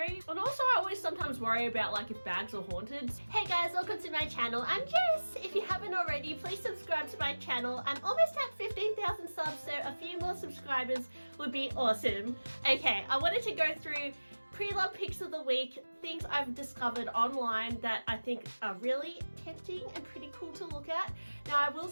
And also I always sometimes worry about like if bags are haunted. Hey guys, welcome to my channel. I'm Jess. If you haven't already, please subscribe to my channel. I'm almost at 15,000 subs, so a few more subscribers would be awesome. Okay, I wanted to go through pre-loved picks of the week, things I've discovered online that I think are really tempting and pretty cool to look at. Now I will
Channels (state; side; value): inverted; both; correlation -1.00